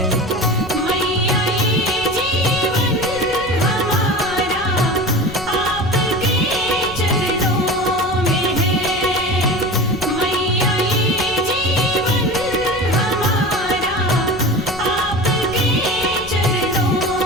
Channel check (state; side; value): noise; left; rumble, 16 dB below the sound